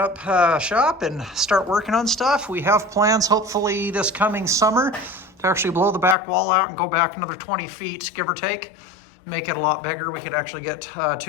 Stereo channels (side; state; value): right; drops out; at 6.2 s